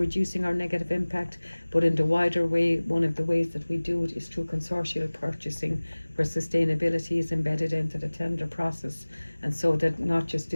our negative impact. But in the wider way, one of the ways that we do it is through consortial purchasing, where sustainability is embedded into the tender process, and so that not just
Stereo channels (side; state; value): both; inverted; correlation -1.00